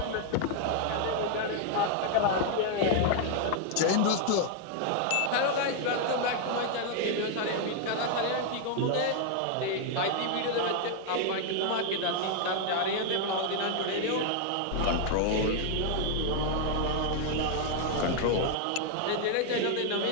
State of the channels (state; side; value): different; both; correlation 0.00